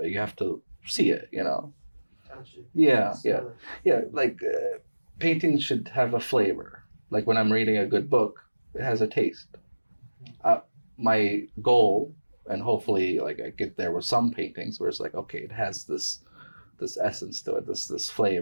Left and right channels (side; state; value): both; inverted; correlation -1.00